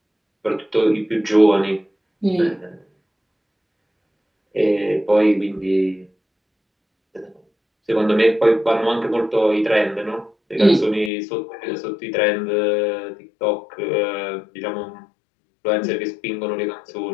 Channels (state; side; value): drops out; right; at 11.1 s